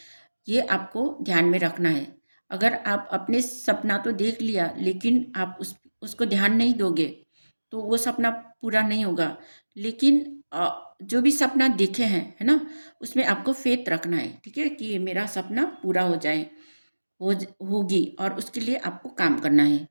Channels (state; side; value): inverted; both; correlation -1.00